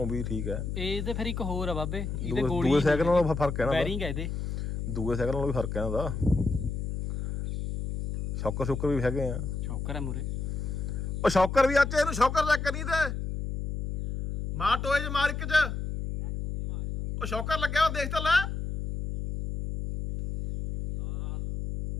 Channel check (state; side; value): noise; left; hum, 4 dB below the sound